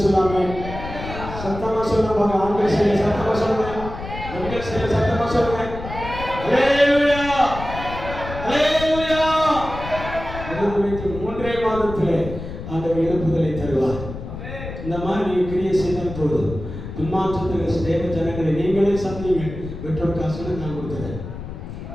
சொல்லாம சத்தமா சொல்லுவாங்க. ஆண்கள் செய்ய சத்தமா சொல்லுங்க, பெண்கள் செய்ய சத்தமா சொல்லுங்க. ஹல்லேலூயா, ஹல்லேலூயா. 3 மாதத்திலே ஆண்டவர் எழுப்புதலை தருவார். இந்த மாதிரி நீங்க கிரியை செய்தால் போதும். பின்மாற்றத்தில் தேவ ஜனங்களை நீங்களே சந்திங்க. பெற்றோர் காசுன்னு நான் கொடுத்துறேன்.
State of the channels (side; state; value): left; noise; rumble, 10 dB below the sound